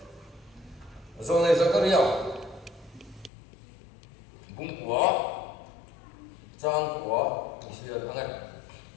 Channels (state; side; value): drops out; right; at 3.3 s